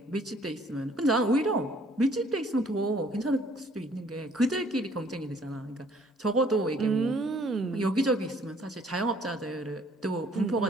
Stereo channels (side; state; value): both; normal; correlation 0.60